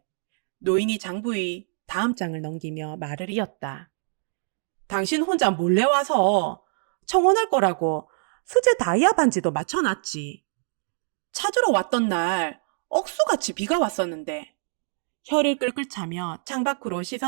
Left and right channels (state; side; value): silent; left; digital silence